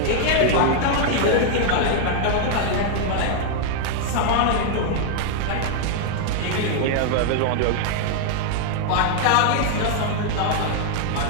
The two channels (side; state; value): both; different; correlation 0.00